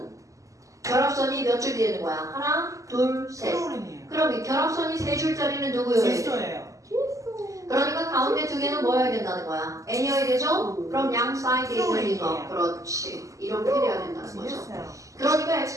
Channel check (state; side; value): late; left; 0.16 ms